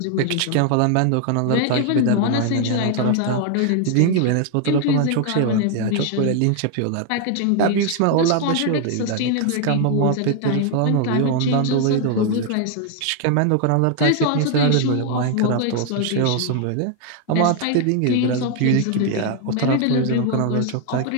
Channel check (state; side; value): different; both; correlation 0.00